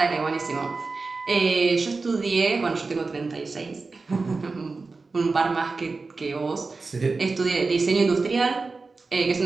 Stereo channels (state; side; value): quieter; left; 4.0 dB